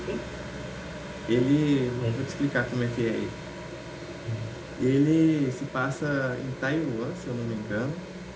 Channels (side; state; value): both; identical; correlation 1.00